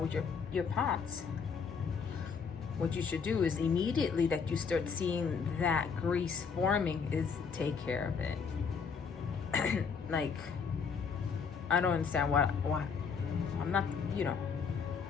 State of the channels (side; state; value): right; quieter; 5.9 dB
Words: your pots, what you should do is immediately that you start seeing that grease forming is take care of it. Like, I don't understand why I'm not, you know.